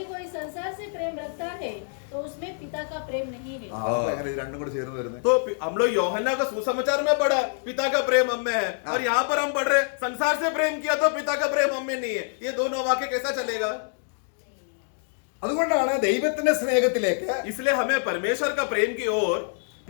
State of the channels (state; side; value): silent; right; digital silence